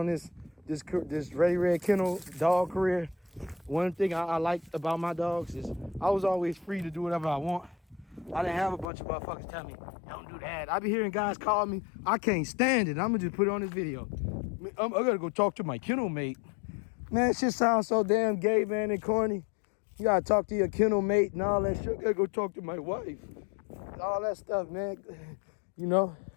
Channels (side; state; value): right; drops out; at 8.9 s